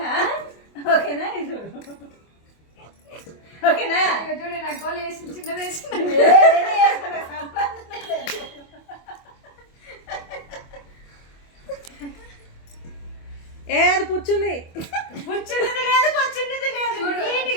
ఓకేనా? ఇది ఓకేనా? చూడే నాకు గోలు వేసి చిన్నది వేసి అది పుచ్చుంది, పుచ్చున్నది లేదు, పచ్చున్నది లేదు. చూడు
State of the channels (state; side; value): late; right; 25 ms